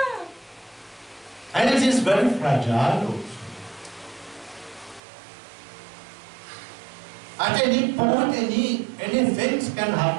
And it is very fragile also. At any point, any things can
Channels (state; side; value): drops out; left; at 5.0 s